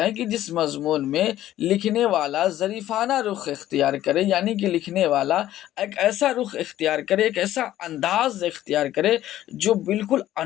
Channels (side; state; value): right; quieter; 13.3 dB